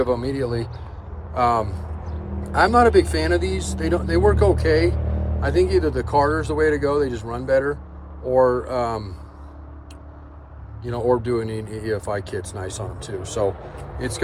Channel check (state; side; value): identical; both; correlation 1.00